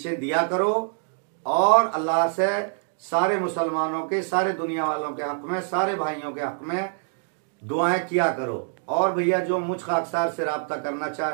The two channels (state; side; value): silent; left; digital silence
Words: दिया करो, और अल्लाह से सारे मुसलमानों के, सारे दुनिया वालों के हक में, सारे भाइयों के हक में दुआएं किया करो। और भैया जो मुझ खाकसार से राब्ता करना